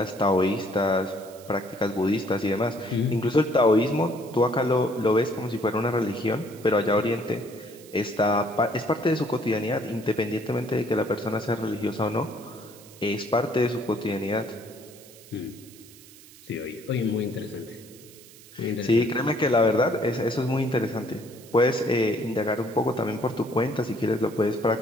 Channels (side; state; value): right; noise; hiss, 21 dB below the sound